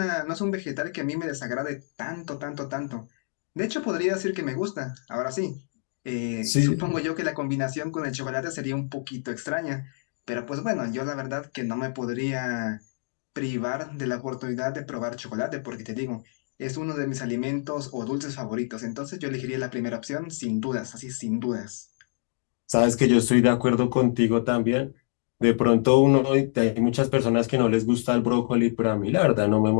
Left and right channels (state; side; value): silent; right; digital silence